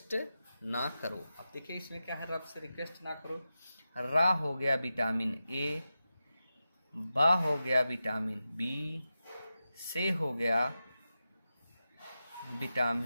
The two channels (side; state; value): both; inverted; correlation -0.92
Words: ना करो। अब देखिए इसमें क्या है, रब से रिक्वेस्ट ना करो। रा हो गया विटामिन ए, बा हो गया विटामिन बी, से हो गया